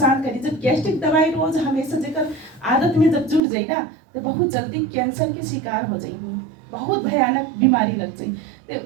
करी। जब गैस्ट्रिक दवाई रोज हमेशा जेकर आदत में जब जुड़ जाए ना, तो बहुत जल्दी कैंसर के शिकार हो जाएगी, बहुत भयानक बीमारी लग जाए। तो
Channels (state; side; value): drops out; left; at 3.4 s